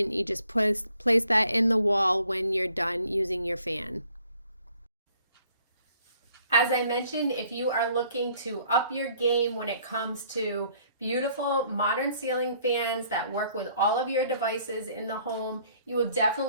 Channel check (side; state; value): both; inverted; correlation -0.62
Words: You just place that in the wall when you're done using your fan. As I mentioned, if you are looking to up your game when it comes to beautiful modern ceiling fans that work with all of your devices in the home, you will